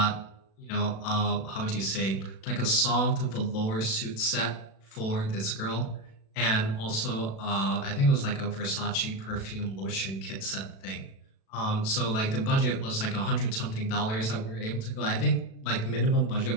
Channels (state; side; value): late; right; 36 ms